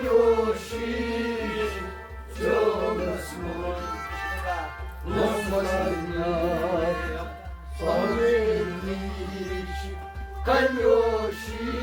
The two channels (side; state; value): both; identical; correlation 1.00